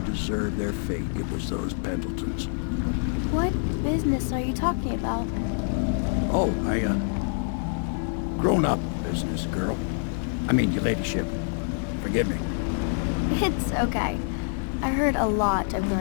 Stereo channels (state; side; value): silent; right; digital silence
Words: deserved their fate, it was those Pendletons. What business are you talking about? Oh, grown-up business, girl. I mean, your ladyship. Forgive me. It's okay. I heard a lot of